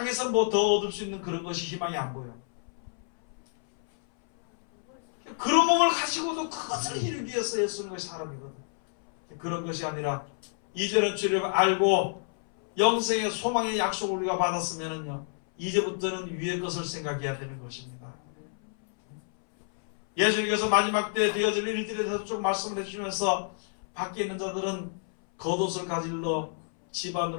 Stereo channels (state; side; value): silent; right; 59 dB below the other